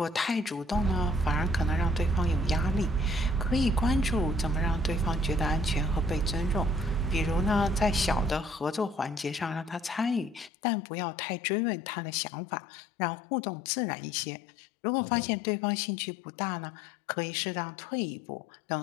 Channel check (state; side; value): drops out; right; at 10.5 s